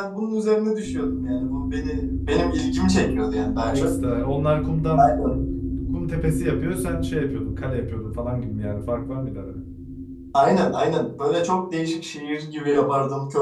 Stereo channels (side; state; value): both; identical; correlation 1.00